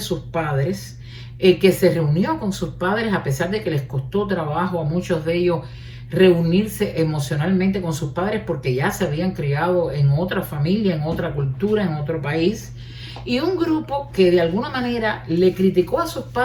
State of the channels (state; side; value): identical; both; correlation 1.00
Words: padres, que se reunió con sus padres a pesar de que les costó trabajo a muchos de ellos reunirse emocionalmente con sus padres, porque ya se habían criado en otra familia, en otra cultura, en otro país. Y un grupo que de alguna manera le criticó a sus